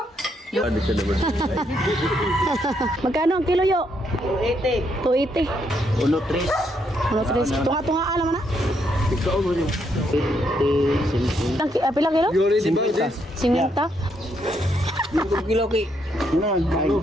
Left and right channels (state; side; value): normal; both; correlation 0.75